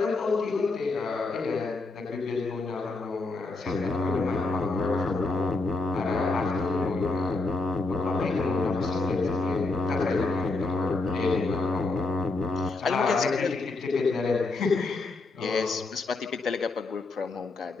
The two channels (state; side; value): quieter; right; 3.5 dB